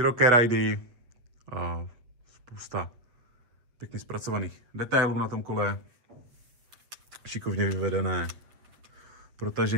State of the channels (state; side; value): late; left; 8.3 ms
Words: rajdy, a spousta pěkně zpracovaných detailů na tom kole, šikovně vyvedené